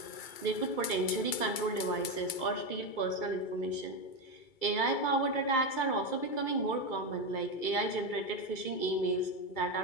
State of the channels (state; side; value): late; right; 2.3 ms